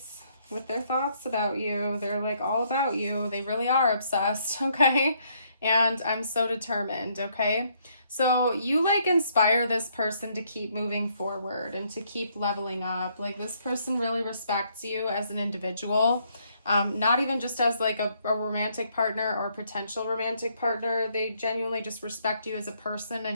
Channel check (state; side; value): inverted; both; correlation -0.70